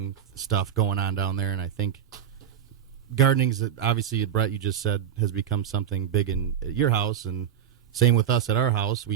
stuff going on down there, and I think gardening's obviously, Brett, you just said, has become something big in your house, and same with us at our house.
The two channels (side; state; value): left; quieter; 9.3 dB